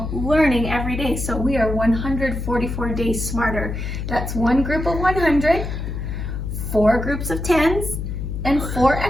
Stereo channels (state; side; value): noise; left; hum, 5 dB below the sound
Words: learning every day. So we are 144 days smarter. That's one group of 100, 4 groups of 10s, and 4